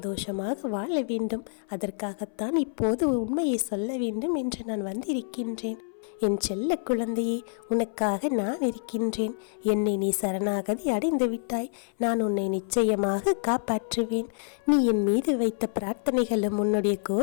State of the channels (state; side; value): silent; right; 60 dB below the other